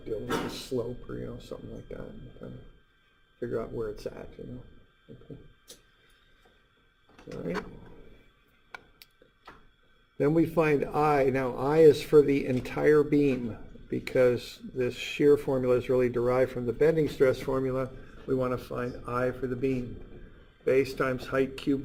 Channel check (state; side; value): identical; both; correlation 1.00